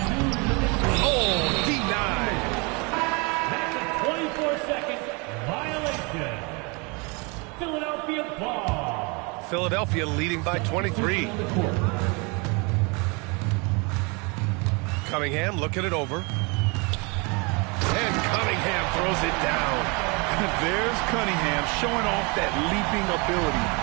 Oh, denied. That's a 24-second violation. Philadelphia ball. Philadelphia leading by 23. Cunningham looking it over. And Cunningham throws it down. There's Cunningham showing off that leaping ability.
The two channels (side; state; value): left; quieter; 30.1 dB